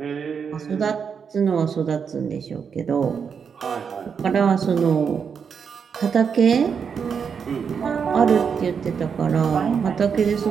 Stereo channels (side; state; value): left; quieter; 6.5 dB